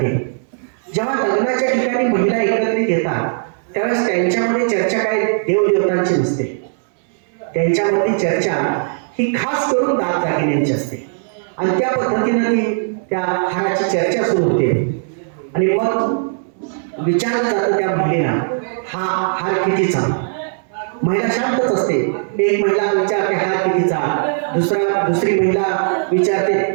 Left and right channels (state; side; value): silent; left; 67 dB below the other